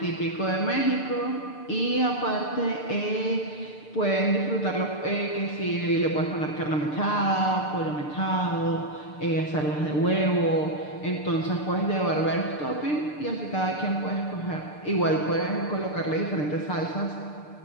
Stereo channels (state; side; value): late; right; 6.7 ms